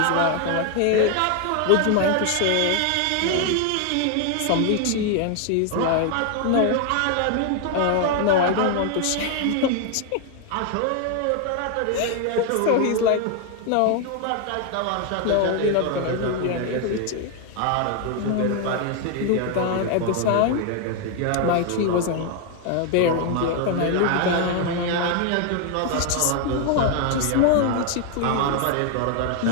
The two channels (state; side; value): different; both; correlation 0.00